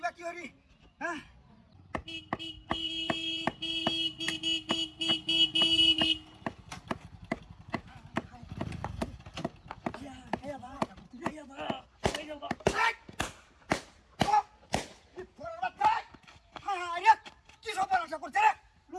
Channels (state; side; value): identical; both; correlation 1.00